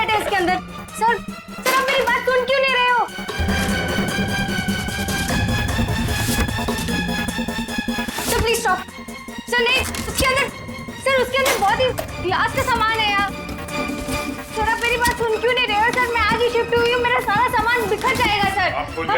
है इसके अंदर। सर आप मेरी बात सुन क्यों नहीं रहे हो? Sir please stop. सर नहीं, उसके अंदर बहुत ही क्लास का सामान है यार। सर आप मेरी बात सुन क्यों नहीं रहे हो? सर मैं आज ही शिफ्ट हुई हूँ, मेरा सारा सामान बिखर जाएगा सर। आप फुल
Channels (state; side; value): identical; both; correlation 1.00